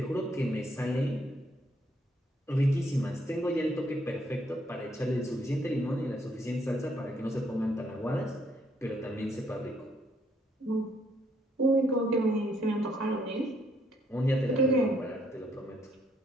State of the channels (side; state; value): both; normal; correlation 0.70